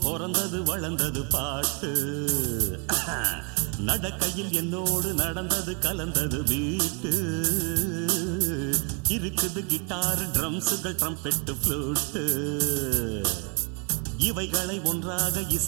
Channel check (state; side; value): quieter; left; 34.9 dB